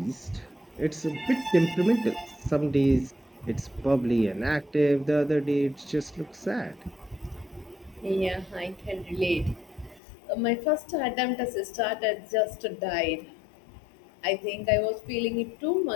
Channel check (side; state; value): right; drops out; at 10.0 s